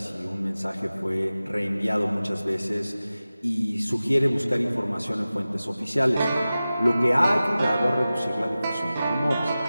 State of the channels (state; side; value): inverted; both; correlation -0.96